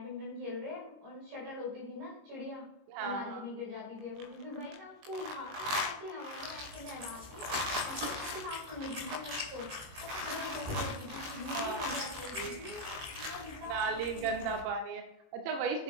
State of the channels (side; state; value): left; late; 21 ms